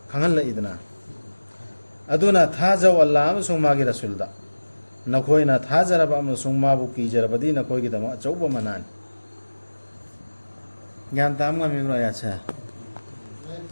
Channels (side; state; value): both; inverted; correlation -1.00